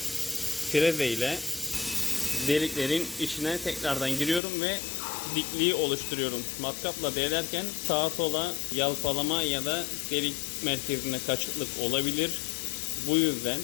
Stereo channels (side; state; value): right; drops out; at 4.4 s